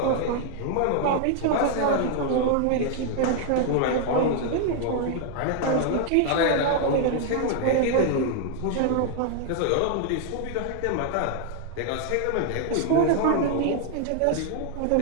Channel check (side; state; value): both; different; correlation 0.00